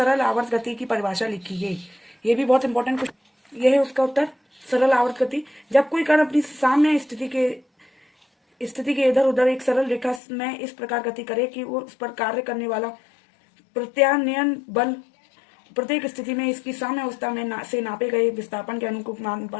आवर्त गति की परिभाषा लिखिए। ये भी बहुत इंपॉर्टेंट क्वेश्चन। यह है उसका उत्तर, सरल आवर्त गति। जब कोई कण अपनी साम्य स्थिति के इधर उधर एक सरल रेखा में इस प्रकार गति करे कि वो उस पर कार्य करने वाला प्रत्यानयन बल प्रत्येक स्थिति में इसकी साम्य अवस्था में से नापे गए विस्थापन के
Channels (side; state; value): right; drops out; at 10.2 s